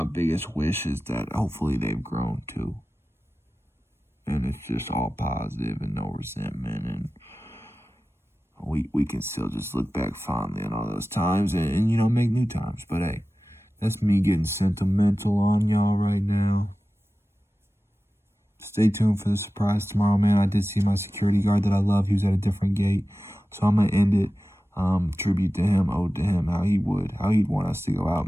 biggest wish is that hopefully they've grown too. And it's just all positive and no resentment, and we can still just look back fondly on all those times, and make new times. But hey, that's me getting sentimental on y'all right now. Stay tuned for the surprise tomorrow, man. I did see my security guard that I love. He was at a different gate, so I'm gonna end it. Tribute to him, ode to him, how he'd want us to go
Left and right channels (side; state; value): both; normal; correlation 0.95